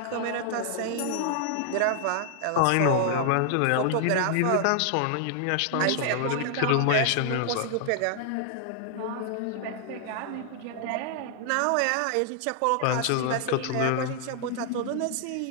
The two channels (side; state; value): both; different; correlation 0.00